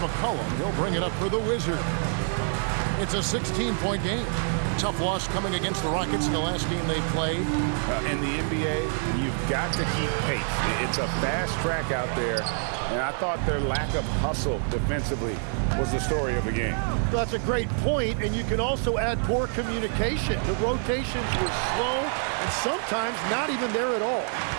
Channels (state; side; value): silent; left; 60 dB below the other